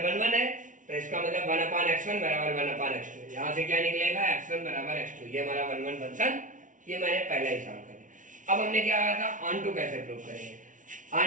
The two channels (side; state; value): left; late; 0.37 ms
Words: 1 है तो इसका मतलब 1/x1 बराबर 1/x2, यहाँ से क्या निकलेगा, x1 बराबर x2, ये हमारा 1 फंक्शन, ये मैंने पहले ही सॉल्व कर दिया। अब हमने क्या कहा था, ऑनटू कैसे प्रूव करेंगे,